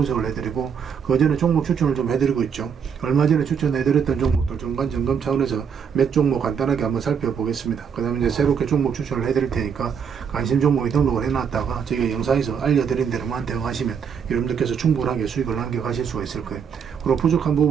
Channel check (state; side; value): quieter; left; 7.0 dB